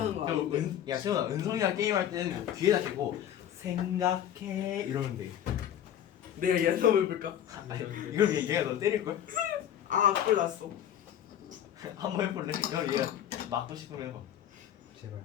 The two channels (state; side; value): quieter; right; 10.5 dB